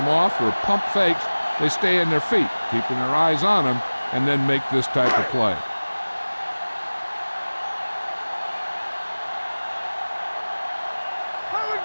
off or pump fakes, they stay in their feet, keeping their eyes on them, and then make this type of play. Here we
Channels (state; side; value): inverted; both; correlation -1.00